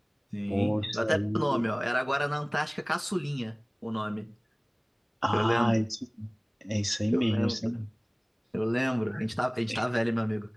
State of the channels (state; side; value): identical; both; correlation 1.00